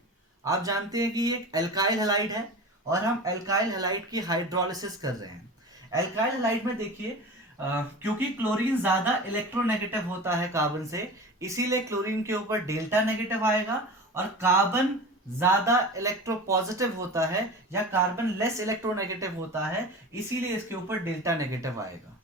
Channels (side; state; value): both; normal; correlation 0.33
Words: आप जानते हैं कि ये एक एल्काइल हैलाइड है और हम एल्काइल हैलाइड की हाइड्रोलिसिस कर रहे हैं। एल्काइल हैलाइड में देखिए क्योंकि क्लोरीन ज्यादा इलेक्ट्रोनेगेटिव होता है कार्बन से, इसीलिए क्लोरीन के ऊपर डेल्टा नेगेटिव आएगा। और कार्बन ज्यादा इलेक्ट्रोपॉजिटिव होता है या कार्बन लेस इलेक्ट्रोनेगेटिव होता है, इसीलिए इसके ऊपर डेल्टा नेगेटिव आएगा।